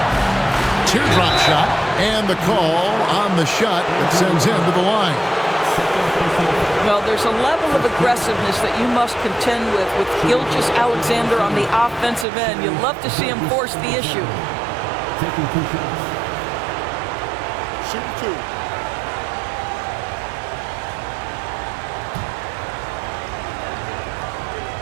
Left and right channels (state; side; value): drops out; left; at 12.2 s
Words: Teardrop shot. And the call on the shot that sends him to the line. Well, there's a level of aggressiveness that you must contend with Gilgeous-Alexander on the offensive end. You love to see him force the issue. Taking 2 shots. Shoot 2.